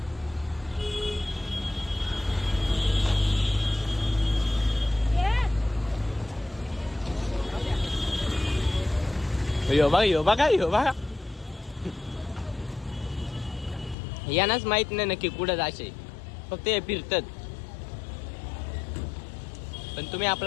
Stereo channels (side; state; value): right; drops out; at 14.0 s